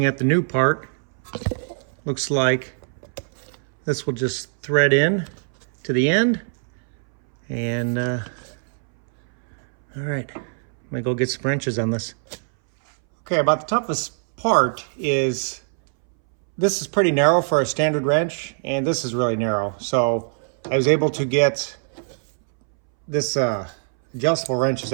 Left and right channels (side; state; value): left; silent; 63 dB below the other